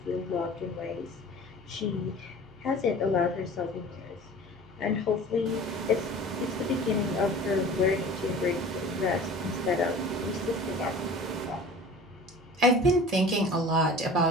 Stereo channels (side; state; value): right; noise; hum, 24 dB below the sound